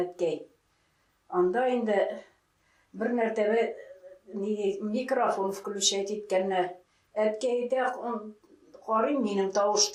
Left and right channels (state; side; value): identical; both; correlation 1.00